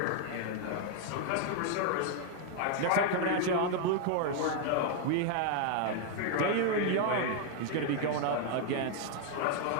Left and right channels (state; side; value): different; both; correlation 0.00